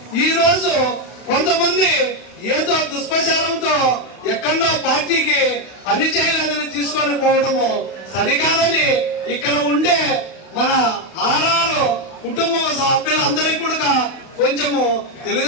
ఈ రోజు కొంతమంది ఏదో దుష్ప్రచారంతో ఎక్కడో పార్టీకి పని చేయలేదని తీసుకొని పోవడము సరికాదని ఇక్కడ ఉండే మన ఆర్ఆర్ కుటుంబ సభ్యులందరికీ కూడా కొంచెము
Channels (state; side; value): late; right; 31 ms